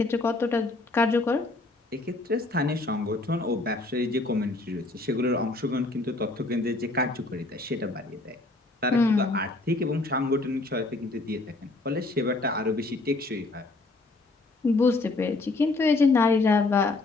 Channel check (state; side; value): quieter; right; 3.2 dB